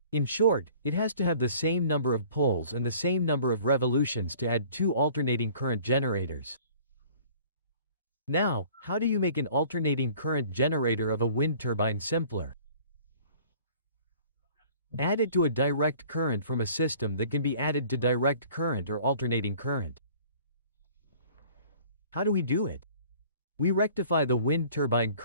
In short, it has to have the same number of poles and the same number of revolutions to add two alternating current generators. Now, how do you make an alternating current generator of a wind turbine simpler? Add it to a direct current from a system that can be added to direct current or alternating current. How do we do it? We rectify the wind turbine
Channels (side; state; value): both; inverted; correlation -0.51